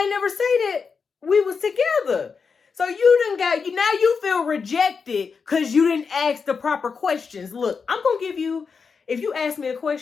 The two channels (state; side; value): quieter; right; 5.4 dB